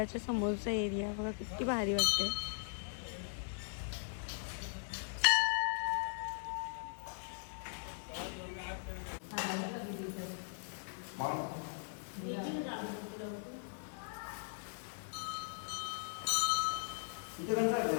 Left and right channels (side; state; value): right; silent; digital silence